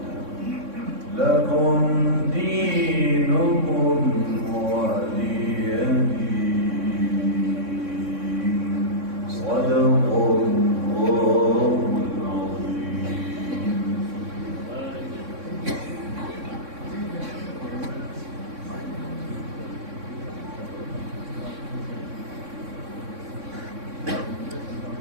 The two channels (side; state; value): left; late; 3.6 ms